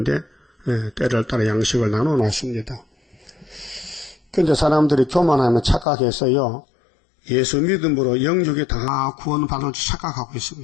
때를 따라 양식을 나눠놨습니다. 근데 사람들이 교만하면 착각해서요. 예수 믿음으로 영육이 다 구원받을 줄 착각하고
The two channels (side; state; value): right; drops out; at 5.9 s